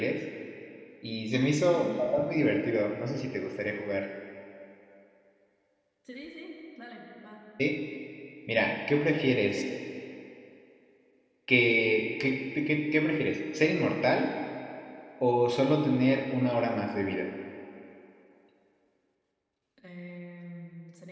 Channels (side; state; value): both; identical; correlation 1.00